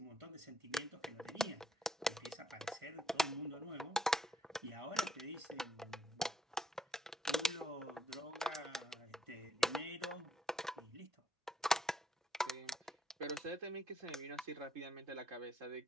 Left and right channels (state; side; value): normal; both; correlation 0.72